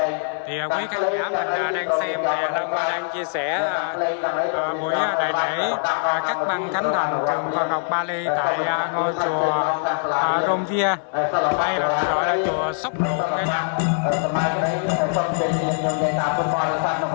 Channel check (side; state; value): right; silent; digital silence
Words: Thì quý khán giả mình đang xem thì Long đang chia sẻ buổi đại lễ cắt băng khánh thành trường Phật học Bali tại ngôi chùa Romvia, hay là gọi là chùa Sóc Ruộng cả nhà. ខ្ញុំនិយាយតាមបរិបទនៅ